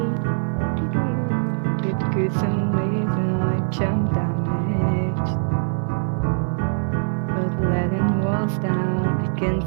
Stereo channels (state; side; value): silent; left; digital silence